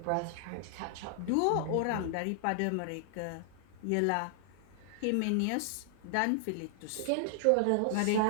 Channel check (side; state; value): both; different; correlation 0.00